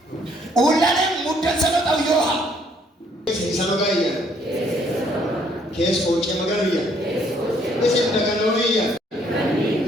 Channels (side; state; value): both; normal; correlation 0.65